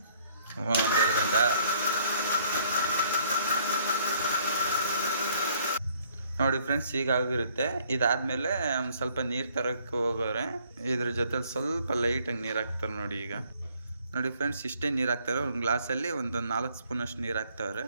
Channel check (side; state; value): both; inverted; correlation -0.62